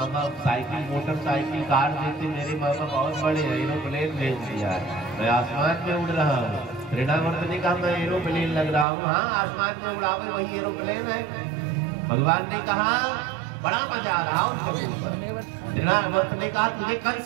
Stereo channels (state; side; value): drops out; left; at 8.8 s